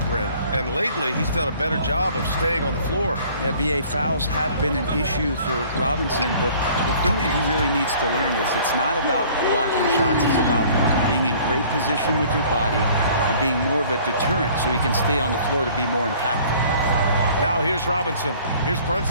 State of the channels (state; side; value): inverted; both; correlation -0.53